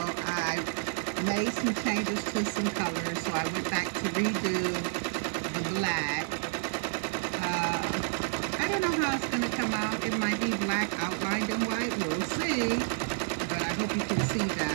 made some changes to some colors. So I went back to redo the black. I don't know how it's going to come out. It might be black outlined in white. We'll see. But I hope you can see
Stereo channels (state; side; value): silent; left; digital silence